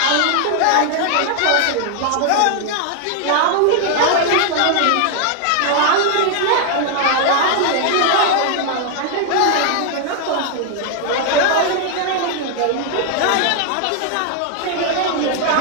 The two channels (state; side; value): different; both; correlation 0.00